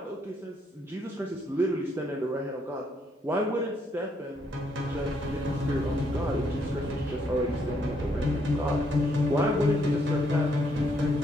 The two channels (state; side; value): normal; both; correlation 0.72